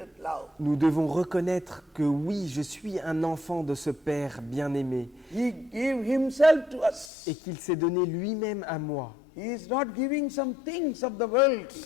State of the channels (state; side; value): drops out; right; at 7.1 s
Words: love. nous devons reconnaître que oui, je suis un enfant de ce Père bien-aimé He gave himself to us. et qu'il s'est donné lui-même à moi. He is not giving some things of the world.